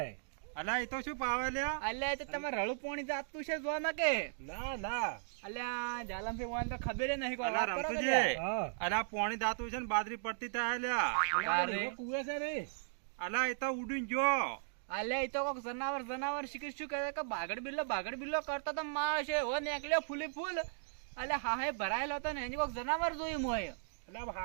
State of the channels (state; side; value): silent; left; digital silence